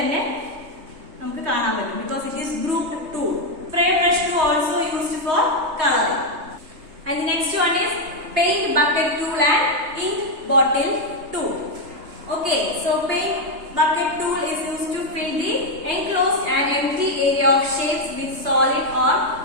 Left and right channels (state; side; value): late; left; 3.2 ms